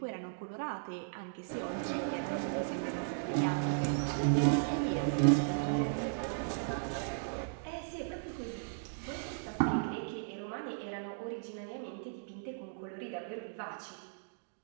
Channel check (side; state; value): left; silent; digital silence